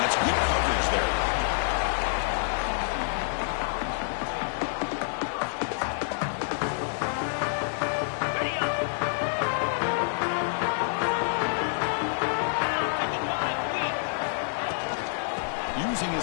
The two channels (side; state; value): right; silent; digital silence